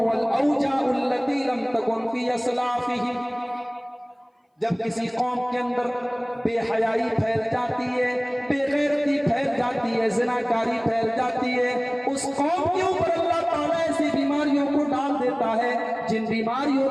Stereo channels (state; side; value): identical; both; correlation 1.00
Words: औजाउ अल्लती लम तकुन फी असलाफिहिम। जब किसी कौम के अंदर बेहयाई फैल जाती है, बेगैरती फैल जाती है, ज़िनाकारी फैल जाती है, उस कौम के ऊपर अल्लाह ताला ऐसी बीमारियों को डाल देता है जिन बीमारियों